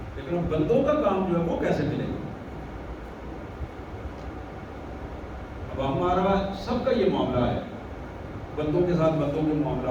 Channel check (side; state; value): both; identical; correlation 1.00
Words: لیکن بندوں کا کام جو ہے وہ کیسے ملے گا؟ اب ہمارا سب کا یہ معاملہ ہے, بندوں کے ساتھ بندوں کے